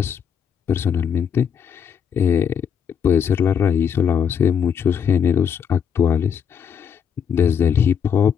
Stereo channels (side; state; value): right; quieter; 7.7 dB